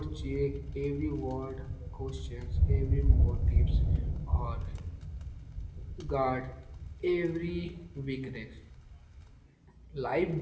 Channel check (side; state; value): both; identical; correlation 1.00